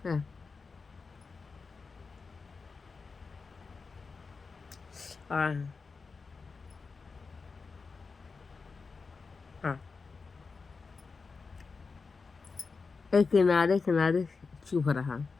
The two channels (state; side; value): quieter; right; 4.6 dB